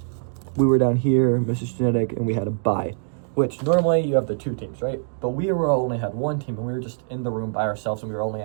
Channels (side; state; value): left; silent; digital silence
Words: We were down here, Mrs. Genetic, and we had a bye. Which normally you have the 2 teams, right? But we only had 1 team, and we were just in the room by ourselves, and we were only